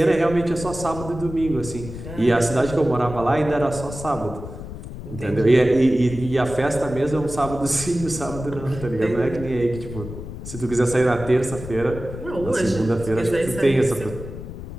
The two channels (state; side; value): noise; left; rumble, 11 dB below the sound